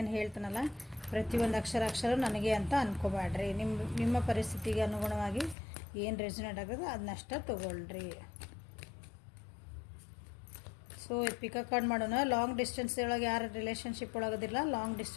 ಹೇಳ್ತಾನಲ್ಲ ಪ್ರತಿಯೊಂದು ಅಕ್ಷರ ನನಗೆ ಅಂತ ಅಂದ್ಕೋಬೇಡ್ರಿ. ನಿಮ್ಮ ಪರಿಸ್ಥಿತಿಗೆ ಅನುಗುಣವಾಗಿ ಏನು ರೆಸೊನೇಟ್ ಆಗೋದು ಅದನ್ನಷ್ಟ ತೊಗೊಳ್ರಿ. ಸೊ ಪಿಕಪ್ ಕಾರ್ಡ್ ಮಾಡೋಣ. ಲಾಂಗ್ ಡಿಸ್ಟೆನ್ಸ್ ಒಳಗೆ ಯಾರು ರಿಲೇಷನ್ಶಿಪ್ ಒಳಗದಿಲ್ಲ, ಲಾಂಗ್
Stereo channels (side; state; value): right; drops out; at 5.6 s